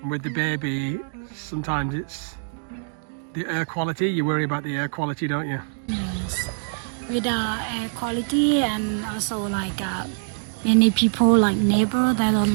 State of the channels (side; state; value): left; silent; digital silence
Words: And with the baby, sometimes it's the air quality. You worry about the air quality, don't you? Yes. With air quality, and also like many people like neighbor, they